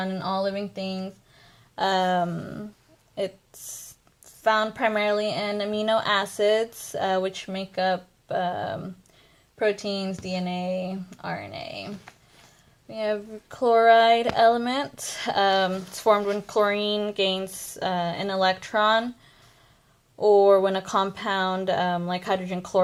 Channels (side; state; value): both; identical; correlation 1.00